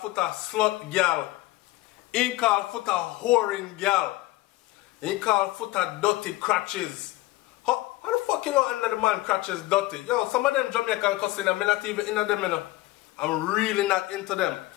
slut girl. He called footer whoring girl. He called footer dirty crutches. How the fuck you know under the man crutches dirty? Yo, some of them Jamaican cussing, I'm not even into them, you know. I'm really not into them.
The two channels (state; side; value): quieter; right; 18.5 dB